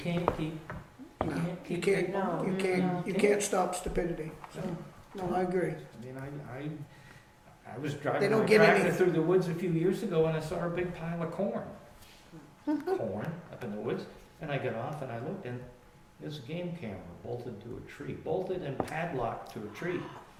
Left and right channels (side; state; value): both; identical; correlation 1.00